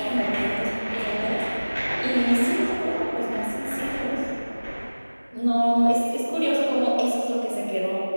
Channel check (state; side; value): inverted; both; correlation -1.00